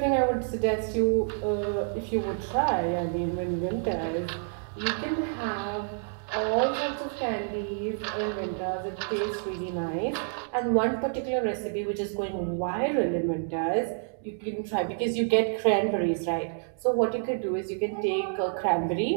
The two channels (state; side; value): silent; left; digital silence